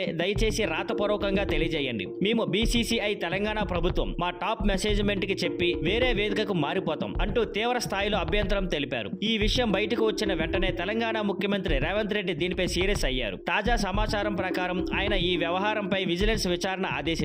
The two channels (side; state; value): both; identical; correlation 1.00